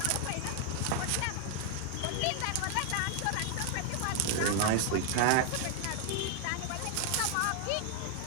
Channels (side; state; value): both; different; correlation 0.00